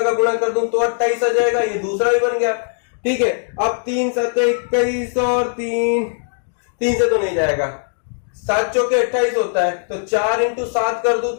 गुणा कर दूं तो 28 आ जाएगा, ये दूसरा भी बन गया। ठीक है, अब 3 7 21 और 3 से तो नहीं जाएगा, 7 चौके 28 होता है, तो 4 इंटू 7 कर दूं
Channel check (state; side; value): silent; right; digital silence